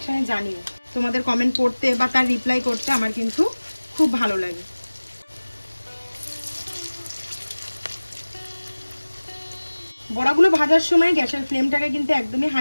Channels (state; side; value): inverted; both; correlation -1.00